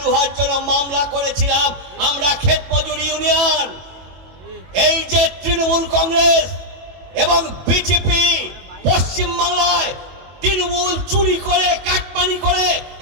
হওয়ার জন্য মামলা করেছিলাম আমরা ক্ষেত মজুরি ইউনিয়ন। এই যে তৃণমূল কংগ্রেস এবং বিজেপি পশ্চিম বাংলায় তৃণমূল চুরি করে কাটমানি করে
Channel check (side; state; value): left; late; 21 ms